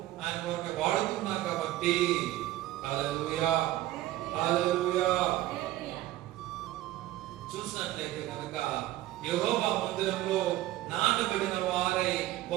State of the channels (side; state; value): left; quieter; 15.3 dB